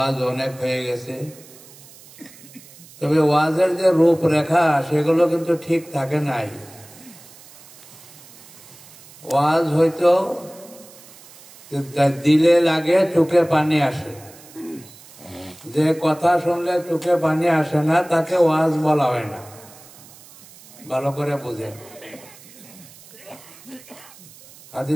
অনেক হয়ে গেছে, তবে ওয়াজের যে রূপরেখা সেগুলো কিন্তু ঠিক থাকে নাই। ওয়াজ হয়তো দিলে লাগে, চোখে পানি আসে। যে কথা শুনলে চোখে পানি আসে না তাকে ওয়াজ বলা হয় না। ভালো করে বুঝেন।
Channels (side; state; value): right; noise; hiss, 22 dB below the sound